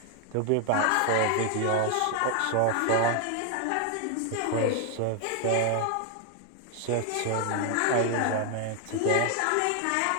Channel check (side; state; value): both; different; correlation 0.00